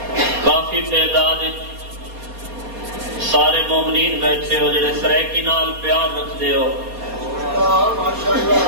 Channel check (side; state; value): left; late; 4.2 ms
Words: کافی تعداد سارے مومنین بیٹھے ہو جڑے سریکی نال پیار رکھ دے ہو